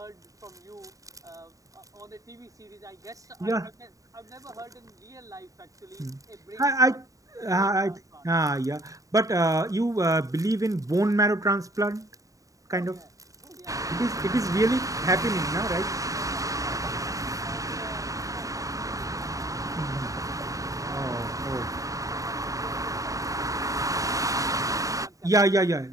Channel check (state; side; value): late; left; 0.16 ms